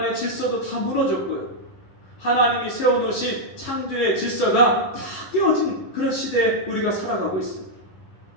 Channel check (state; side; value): late; right; 11 ms